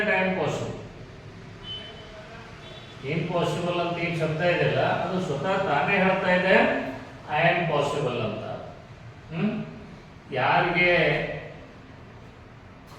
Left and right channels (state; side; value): identical; both; correlation 1.00